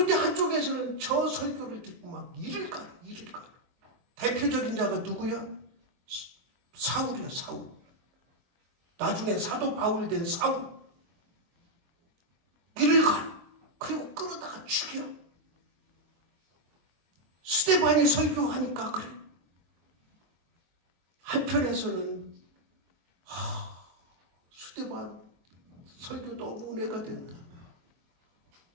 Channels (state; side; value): late; left; 23 ms